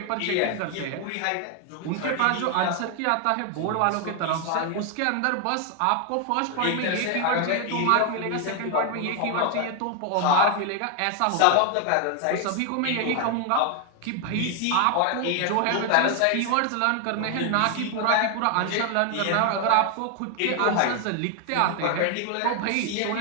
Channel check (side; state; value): both; different; correlation 0.01